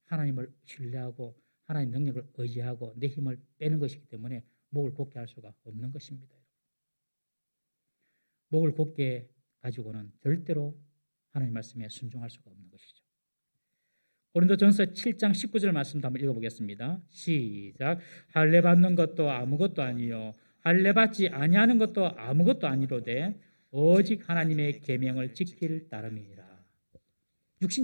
하나님을 신뢰하고 하나님 능력을 의지하고 내 힘을 빼는 것이기 때문에 목을 곧게 할 수가 없는 것입니다. 목을 곧게 가지고는 절대로 하나님 말씀에 순종할 수가 없는 것이죠. 고린도전서 7장 19절 말씀도 한번 읽어보겠습니다. 시작. 할례 받는 것도 아무것도 아니요 할례 받지 아니하는 것도 아무것도 아니로되 오직 하나님의 계명을 지킬 따름이니라.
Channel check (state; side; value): inverted; both; correlation -1.00